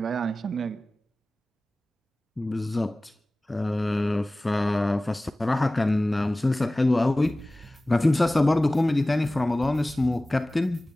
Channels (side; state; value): both; normal; correlation 0.98